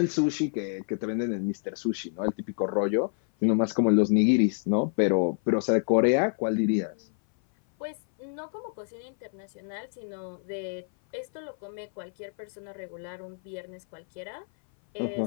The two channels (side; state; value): right; silent; 56 dB below the other